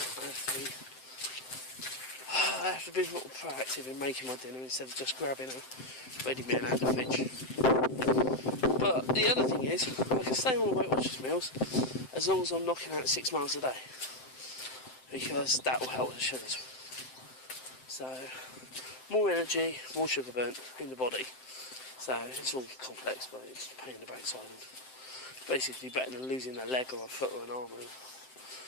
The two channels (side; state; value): right; late; 7.7 ms